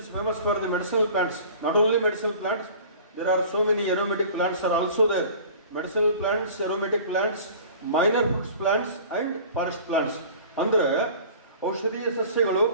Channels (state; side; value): inverted; both; correlation -0.43